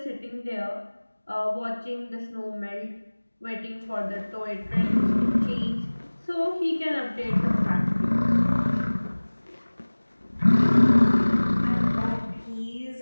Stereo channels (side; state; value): both; inverted; correlation -1.00